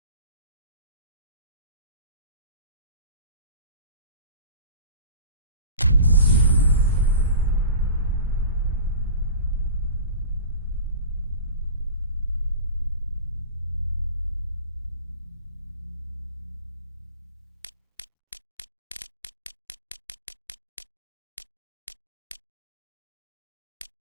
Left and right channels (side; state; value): both; inverted; correlation -0.36